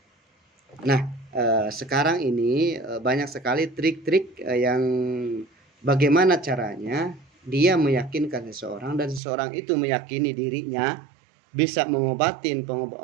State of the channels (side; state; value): left; drops out; at 9.2 s